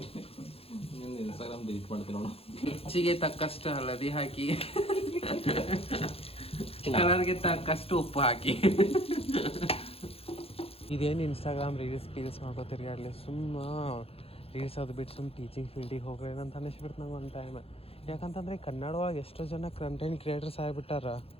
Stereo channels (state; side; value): late; right; 0.28 ms